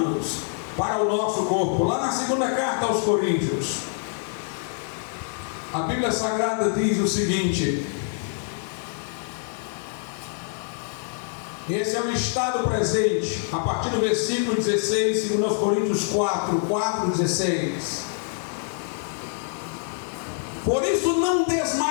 para o nosso corpo. Lá na segunda carta aos Coríntios, a Bíblia Sagrada diz o seguinte: esse é o estado presente, a partir do versículo 16, 2 Coríntios 4, 16. Por isso não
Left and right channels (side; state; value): right; silent; 61 dB below the other